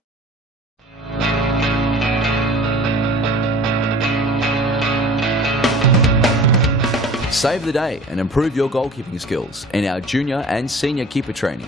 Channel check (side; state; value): both; normal; correlation 0.44